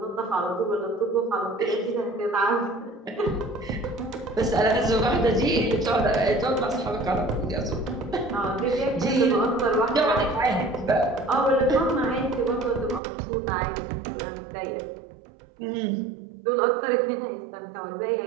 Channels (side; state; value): left; drops out; at 13.0 s